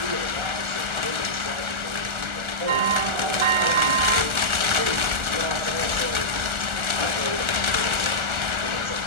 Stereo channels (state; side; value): late; left; 1.4 ms